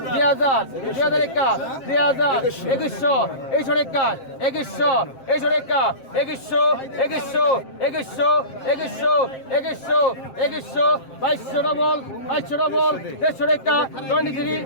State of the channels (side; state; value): right; late; 7.5 ms